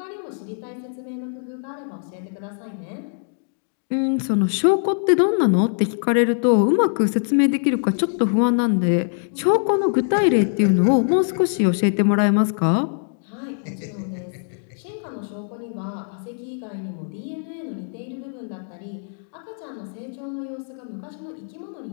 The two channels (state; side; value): silent; right; digital silence